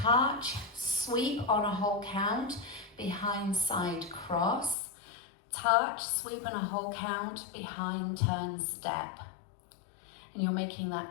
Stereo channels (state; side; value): drops out; right; at 4.8 s